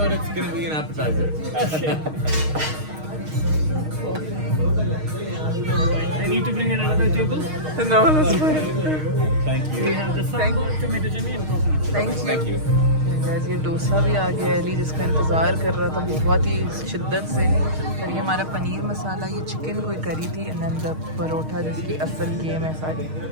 it's gonna be an appetizer. I need to bring another table. No, that's fine. Thank you We have the sambar, tomato chutney and coconut. Thank you. Thank you guys ये डोसा भी आ गया है। अली जिसका इंतज़ार कर रहा था बहुत ही शिद्दत से। और ये हमारा पनीर मसाला, ये चिकन कोई करी थी, एंड देन द परोठा जिसकी असल गेम है सारी।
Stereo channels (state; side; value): late; left; 6.4 ms